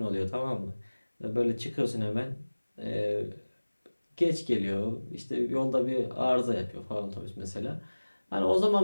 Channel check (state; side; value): inverted; both; correlation -1.00